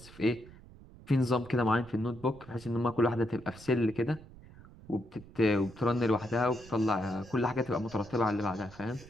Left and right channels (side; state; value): right; noise; rumble, 20 dB below the sound